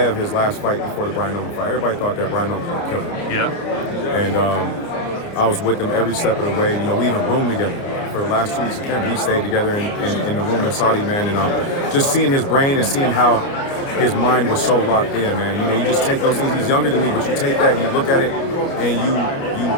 his last fight before the Brian Newman fight, everybody thought that Brian Newman was going to kill him. Yeah. And I was with him every step of the way. You know, we even roomed together for the last 2 weeks of camp. We stayed together in the room in Saudi, man. And just seeing his brain and seeing how his mind was so locked in, man. You know, you just take those things. He's younger than me, but you take that, you look at it, and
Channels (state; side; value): late; right; 30 ms